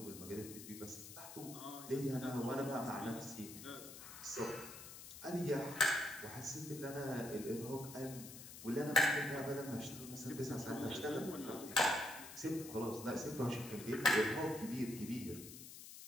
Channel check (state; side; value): noise; left; hiss, 13 dB below the sound